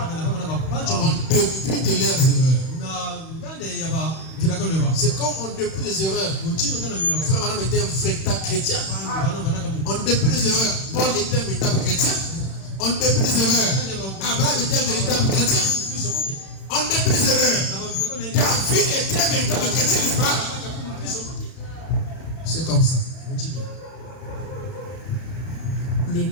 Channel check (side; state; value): right; late; 31 ms